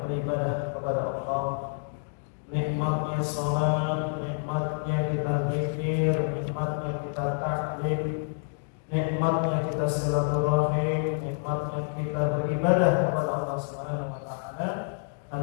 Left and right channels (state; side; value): silent; right; digital silence